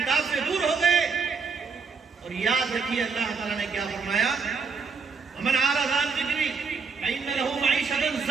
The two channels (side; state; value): left; quieter; 5.2 dB